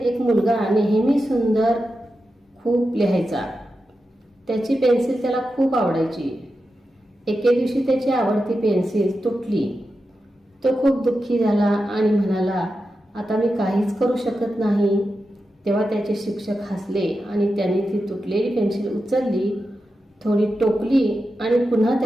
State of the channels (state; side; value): normal; both; correlation 0.90